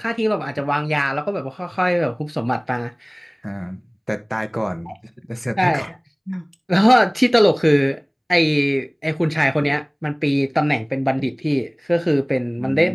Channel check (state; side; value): identical; both; correlation 1.00